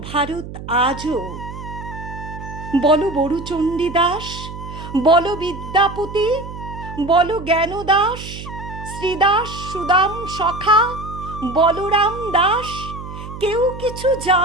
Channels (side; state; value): right; noise; hum, 11 dB below the sound